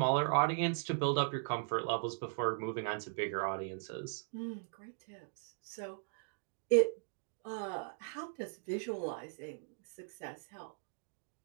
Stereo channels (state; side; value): silent; left; digital silence